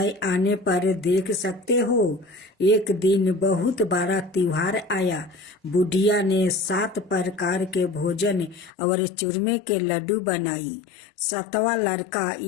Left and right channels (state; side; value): drops out; right; at 8.7 s